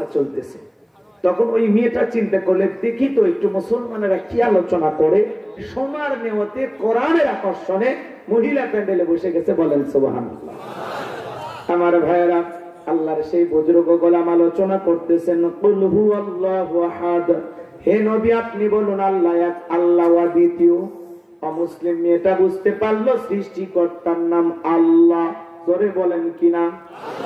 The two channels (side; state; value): both; identical; correlation 1.00